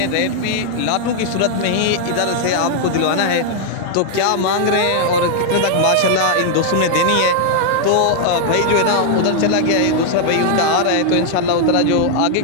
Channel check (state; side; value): different; both; correlation 0.00